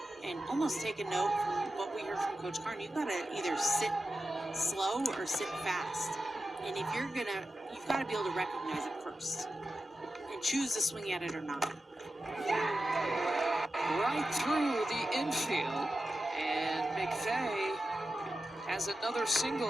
And almost take a note from what we heard from Coach Carn. You've got to either sit slow or sit fast. And if you've got to be able to recognize it first and choose to swing at it or not. Right through the infield, and McVeigh has another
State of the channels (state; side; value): normal; both; correlation 0.92